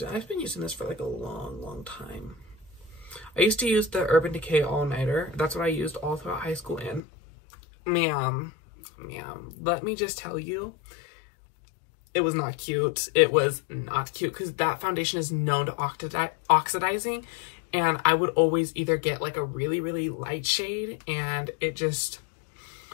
it. I've been using this for like a long time. I used to use the Urban Decay All Nighter. That's what I used all throughout high school, and ma'am, let me just tell you, it was not cute. It was not cute because that foundation is known to oxidizing, and I would always either get like a really light shade and it just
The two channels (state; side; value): drops out; right; at 7.0 s